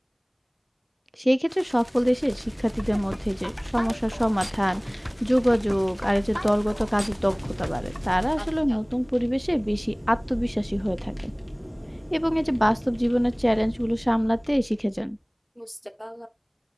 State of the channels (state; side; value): identical; both; correlation 1.00